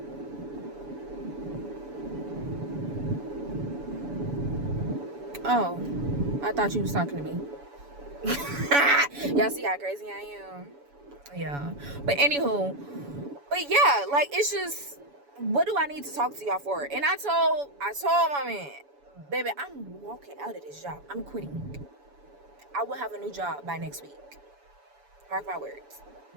Oh, I thought you was talking to me. Y'all see how crazy I am? Yeah. But anywho, yeah, like, it's just, what do I need to talk to y'all for? And I told my man, baby, I'm walking out of this job. I'm quitting. I will have a new job by next week. Mark my words.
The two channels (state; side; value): late; left; 7.0 ms